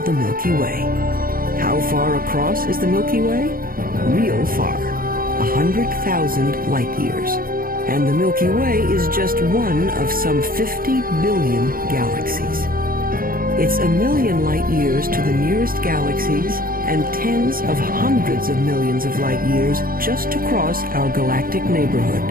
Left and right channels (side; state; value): left; late; 0.42 ms